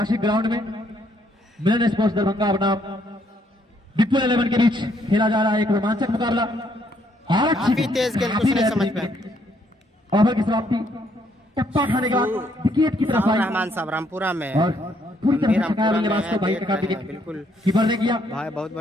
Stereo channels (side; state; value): both; normal; correlation 0.70